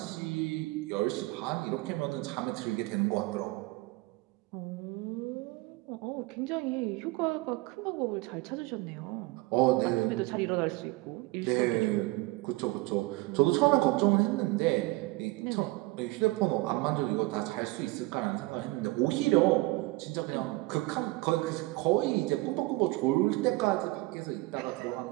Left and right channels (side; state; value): left; quieter; 21.8 dB